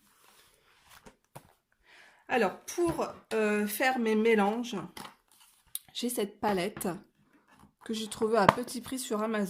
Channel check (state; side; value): identical; both; correlation 1.00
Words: Alors pour faire mes mélanges, j'ai cette palette que j'ai trouvée à petit prix sur